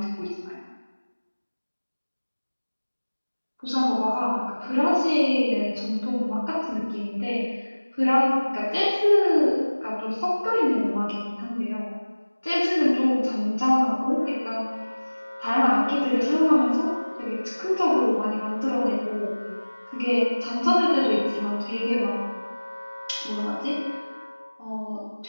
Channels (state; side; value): inverted; both; correlation -1.00